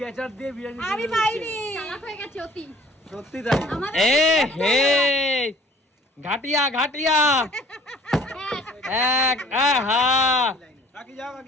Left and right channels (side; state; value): both; normal; correlation 0.52